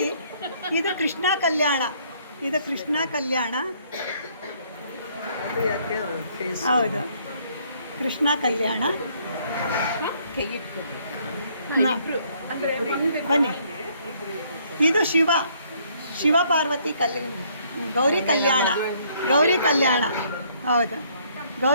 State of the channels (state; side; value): inverted; both; correlation -0.65